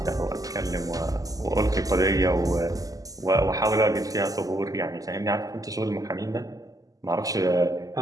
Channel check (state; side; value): late; left; 0.17 ms